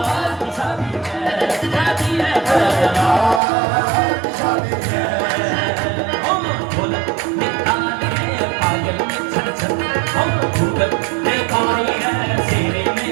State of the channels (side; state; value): left; drops out; at 3.4 s